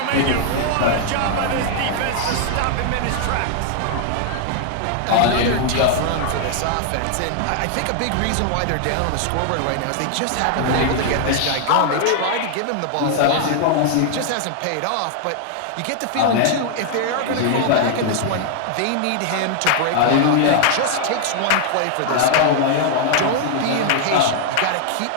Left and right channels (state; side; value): different; both; correlation 0.00